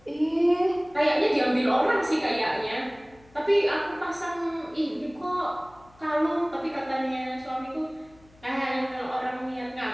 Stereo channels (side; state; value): left; noise; hum, 28 dB below the sound